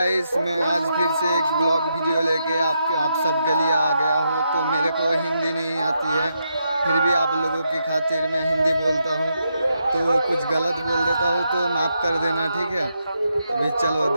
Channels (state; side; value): inverted; both; correlation -0.82